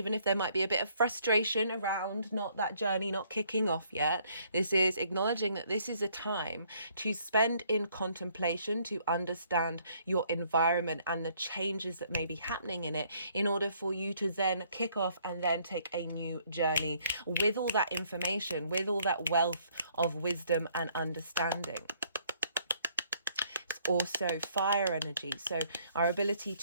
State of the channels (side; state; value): both; inverted; correlation -0.64